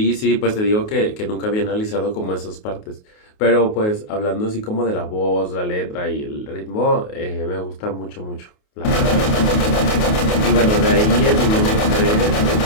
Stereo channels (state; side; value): late; right; 28 ms